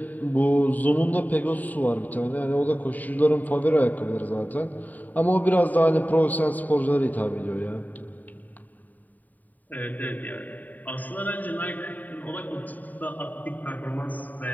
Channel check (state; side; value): late; right; 0.083 ms